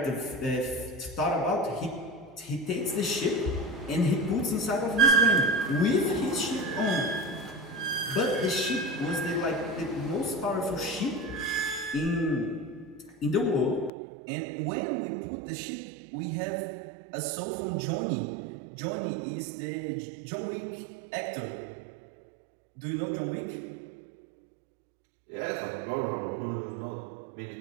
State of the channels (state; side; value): drops out; left; at 13.9 s